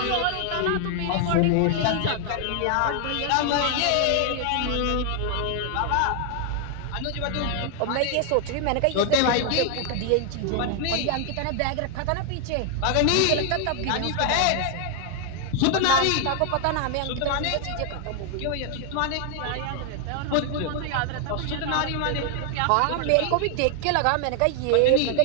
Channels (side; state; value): both; different; correlation 0.00